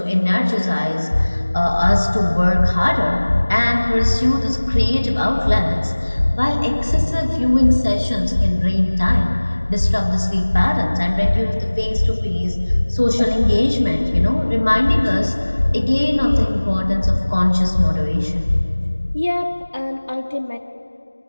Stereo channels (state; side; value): inverted; both; correlation -1.00